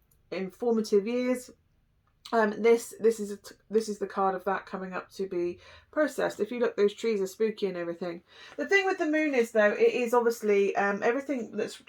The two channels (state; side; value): identical; both; correlation 1.00